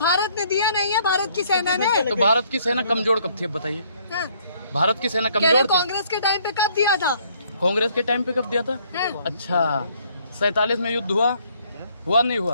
ने दिया नहीं है, भारत की सेना ने। तो भारत की सेना कमजोर कब थी अब बताइए? हाँ। भारत की सेना कमजोर थी? कांग्रेस के टाइम पे कब दिया था? कांग्रेस के टाइम पे कब दिया था? हाँ। अच्छा, 47 में युद्ध हुआ नहीं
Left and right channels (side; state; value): both; inverted; correlation -0.65